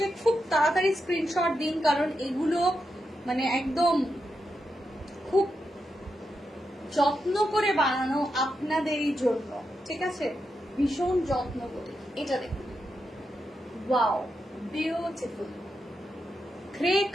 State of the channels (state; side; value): normal; both; correlation 0.86